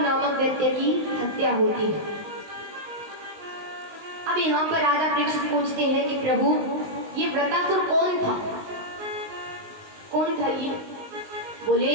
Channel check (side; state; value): left; late; 19 ms